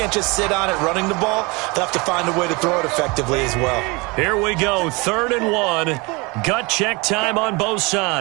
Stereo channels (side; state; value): left; quieter; 26.8 dB